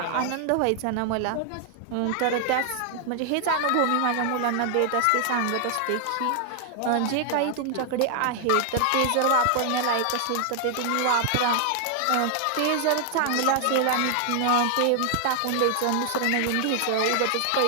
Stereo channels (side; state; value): both; different; correlation 0.00